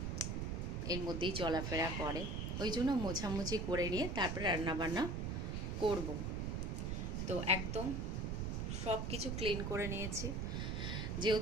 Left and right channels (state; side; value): noise; right; rumble, 1 dB below the sound